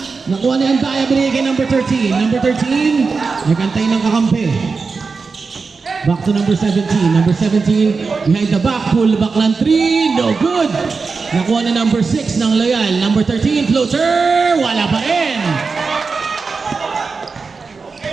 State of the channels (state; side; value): quieter; left; 4.6 dB